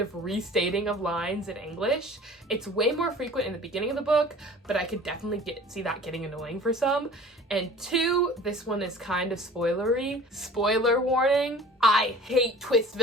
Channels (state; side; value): normal; both; correlation 0.44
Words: restating of lines in English. It's way more frequent in the beginning of the book, but I could definitely see that getting annoying for some. And two, this one is kind of spoilery. Spoiler warning, I hate twist